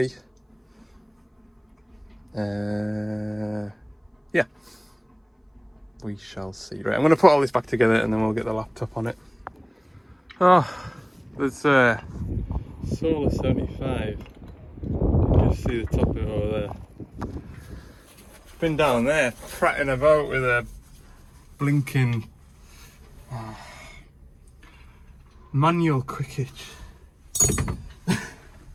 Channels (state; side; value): identical; both; correlation 1.00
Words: Yeah, we shall see. Right, I'm going to put all this back together and then we'll get the laptop on it. Oh, there's Solar 75. You can just see the top of it over there. Been down there prattling about with a blinking manual quick hitch.